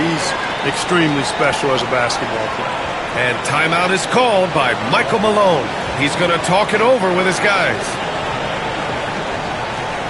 extremely special as a basketball player. And timeout is called by Michael Malone. He's going to talk it over with his guys.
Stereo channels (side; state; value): both; identical; correlation 1.00